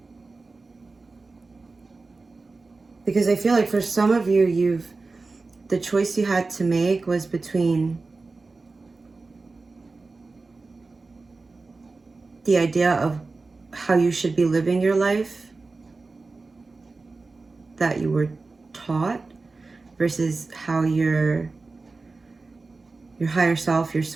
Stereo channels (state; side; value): quieter; left; 3.8 dB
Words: Because I feel like for some of you, the choice you had to make was between the idea of how you should be living your life that you were taught versus how your higher self, your